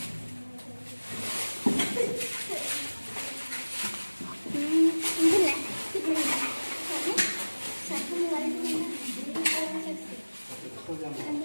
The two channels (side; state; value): both; inverted; correlation -1.00